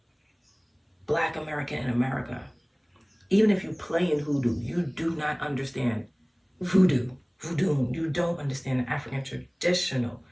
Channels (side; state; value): both; identical; correlation 1.00